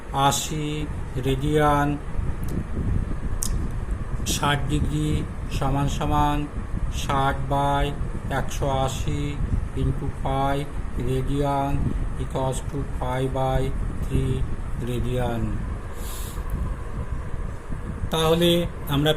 রেডিয়ান। 60 ডিগ্রি সমান সমান 60 by 180 into pi radian equals to pi by 3 radian. তাহলে আমরা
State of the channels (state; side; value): identical; both; correlation 1.00